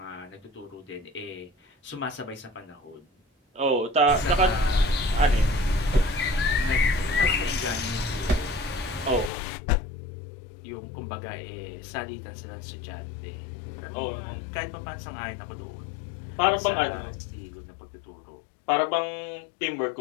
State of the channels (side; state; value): right; drops out; at 9.3 s